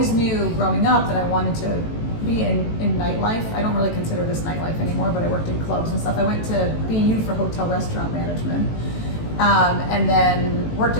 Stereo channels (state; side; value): late; right; 18 ms